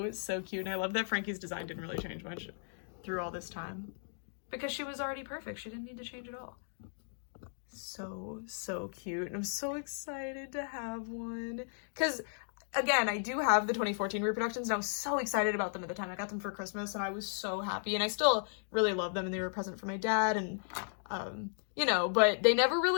so cute. And I love that Frankie's design didn't really change much through all this time, because she was already perfect. She didn't need to change at all. So, so cute. And I'm so excited to have one. Because, again, I do have the 2014 reproductions, and I was so excited about them at the time. I got them for Christmas, and I was so happy. And I still really love them, and they were a present for my dad. And, you know, but they never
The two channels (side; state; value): right; silent; digital silence